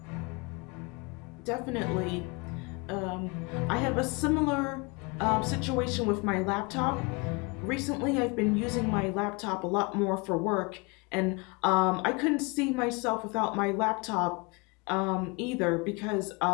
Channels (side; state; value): right; quieter; 28.9 dB